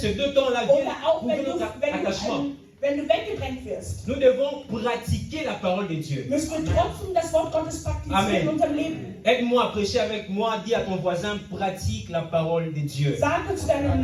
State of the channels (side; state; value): both; identical; correlation 1.00